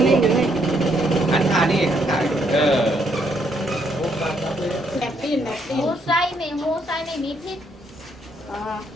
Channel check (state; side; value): normal; both; correlation 0.72